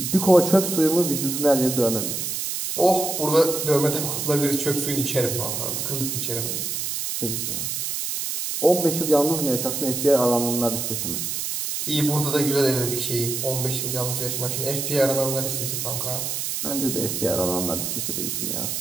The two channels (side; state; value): right; noise; hiss, 2 dB below the sound